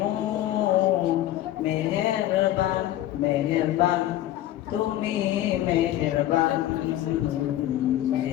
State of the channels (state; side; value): quieter; right; 13.8 dB